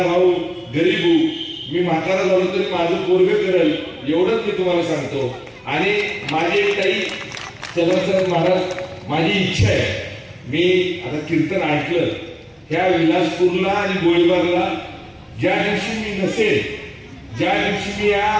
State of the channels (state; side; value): identical; both; correlation 1.00